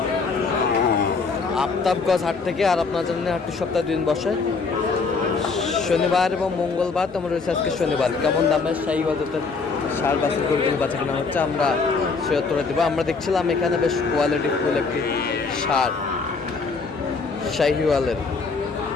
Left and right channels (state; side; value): quieter; right; 4.5 dB